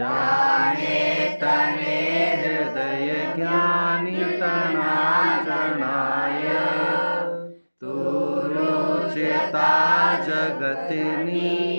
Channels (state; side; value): inverted; both; correlation -1.00